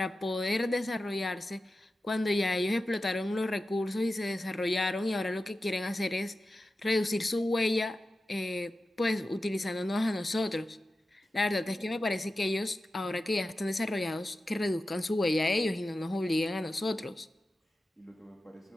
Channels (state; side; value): normal; both; correlation 0.93